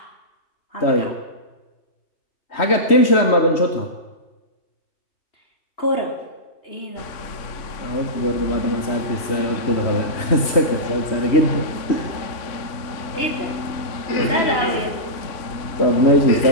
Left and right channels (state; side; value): late; right; 3.1 ms